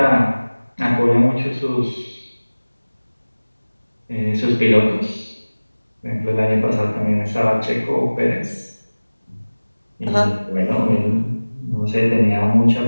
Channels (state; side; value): inverted; both; correlation -1.00